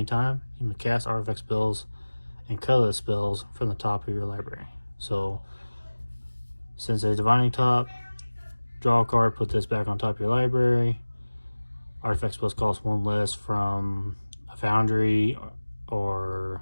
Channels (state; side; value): inverted; both; correlation -1.00